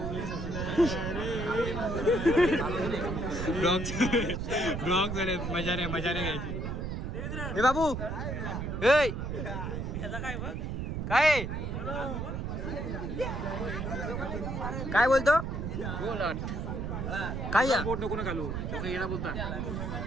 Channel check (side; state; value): right; noise; rumble, 3 dB below the sound